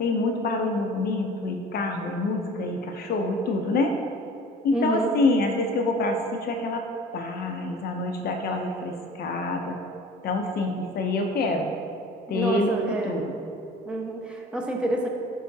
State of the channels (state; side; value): normal; both; correlation 0.45